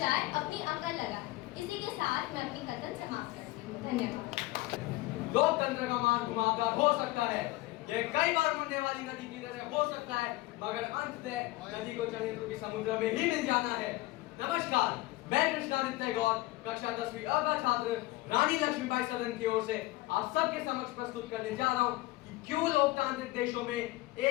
अपनी अकल लगा। इसी के साथ मैं अपनी कथन समाप्त करती हूँ। धन्यवाद। लोकतंत्र का मार्ग घुमावदार हो सकता है, यह कई बार मुड़ने वाली नदी की तरह हो सकता है, मगर अंततः नदी को षड्यंत्र के समुद्र में ही मिल जाना है। नमस्कार, मैं कृष्णादित्य गौर, कक्षा 10वीं अ का छात्र रानी लक्ष्मीबाई सदन की ओर से आप सबके समक्ष प्रस्तुत करने जा रहा हूँ कि क्यों लोकतांत्रिक देशों में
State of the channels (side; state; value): right; quieter; 19.2 dB